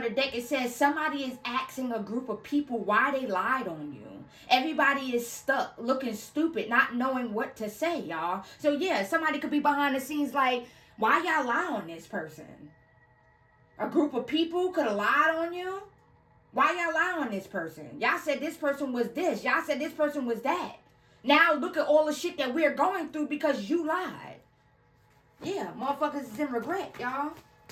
the deck, it says somebody is asking a group of people why they lied on you. Everybody is stuck, looking stupid, not knowing what to say, y'all. So, yeah, somebody could be behind the scenes like, why y'all lie on this person? A group of people could have lied on you? Why y'all lie on this person? Y'all said this person was this. Y'all said this person was that. Now look at all the shit that we're going through because you lied. Yeah, motherfuckers is in regret, y'all.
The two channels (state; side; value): identical; both; correlation 1.00